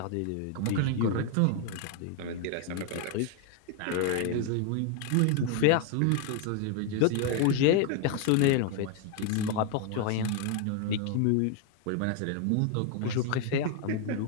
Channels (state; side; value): different; both; correlation 0.01